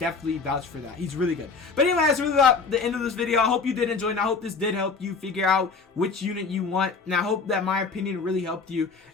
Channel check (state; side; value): quieter; right; 4.7 dB